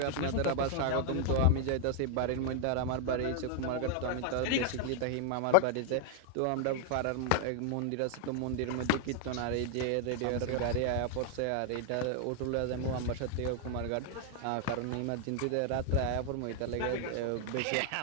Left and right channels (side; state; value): both; different; correlation 0.00